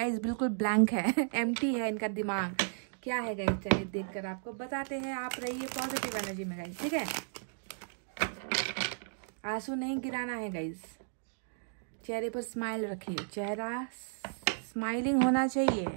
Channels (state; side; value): silent; left; digital silence